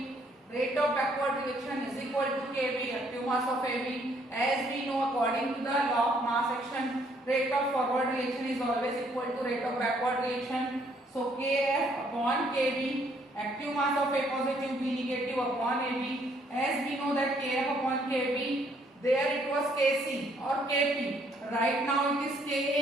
Rate of backward reaction is equal to Kb, active mass of Ab. As we know, according to the law of mass action, rate of forward reaction is always equal to rate of backward reaction. So Kf upon Kb, active mass of A positive, B negative upon Ab. As we know that Kf upon Kb, there it was Kc or Kp. Right now it is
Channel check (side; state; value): both; normal; correlation 0.67